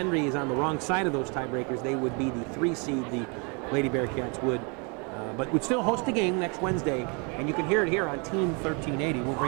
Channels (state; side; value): quieter; left; 33.7 dB